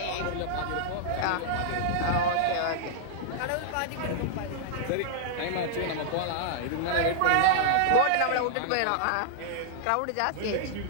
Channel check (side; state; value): both; different; correlation -0.01